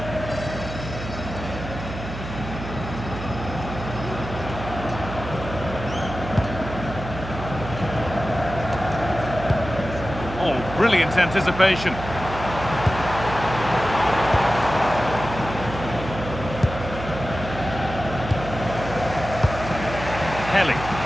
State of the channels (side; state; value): right; noise; hum, 9 dB below the sound